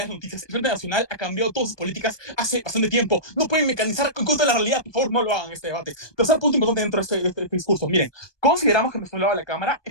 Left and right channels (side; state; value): right; late; 1.2 ms